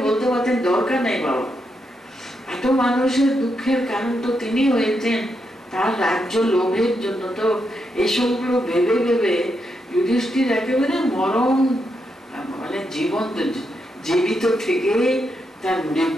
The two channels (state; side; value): normal; both; correlation 0.82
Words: বলতে পারতেন দরকার নেই বাবা, এত মানুষের দুঃখের কারণ তো তিনি হয়েছেন, তার রাজ্য লোভের জন্য তো এসবগুলো ভেবে ভেবে যুধিষ্ঠির একেবারে মরণ, মানে জীবিত থেকে তার